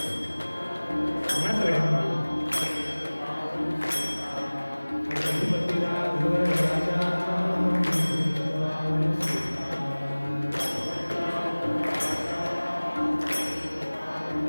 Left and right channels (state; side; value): inverted; both; correlation -1.00